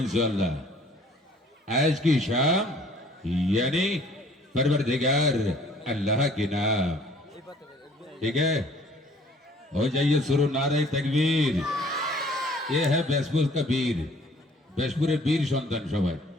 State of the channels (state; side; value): normal; both; correlation 0.56